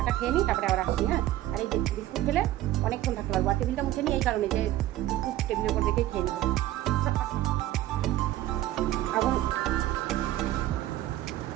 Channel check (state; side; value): quieter; left; 14.5 dB